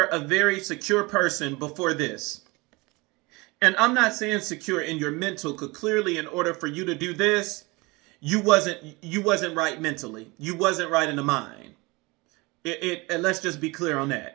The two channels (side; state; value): left; quieter; 24.6 dB